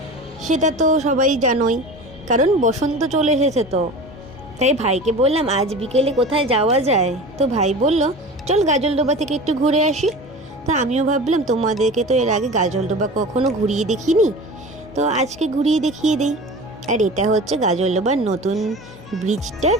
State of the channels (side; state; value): both; normal; correlation 0.35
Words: সেটা তো সবাই জানোই, কারণ বসন্ত চলে এসেছে। তো তাই ভাইকে বললাম আজ বিকেলে কোথায় যাওয়া যায়। তো ভাই বলল চল গাজলডোবা থেকে একটু ঘুরে আসি। তো আমিও ভাবলাম তোমাদেরকে তো এর আগে গাজলডোবা কখনো ঘুরিয়ে দেখিনি, তো আজকে ঘুরিয়ে দেখিয়ে দিই। আর এটা হচ্ছে গাজলডোবার নতুন ব্রিজটার